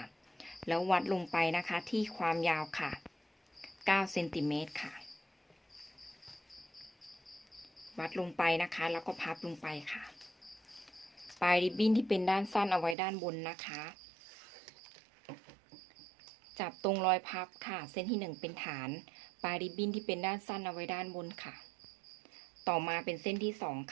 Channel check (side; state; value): left; drops out; at 13.0 s